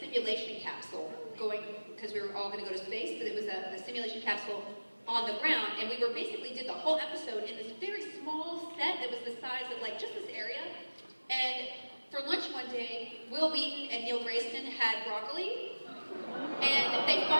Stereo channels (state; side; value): inverted; both; correlation -1.00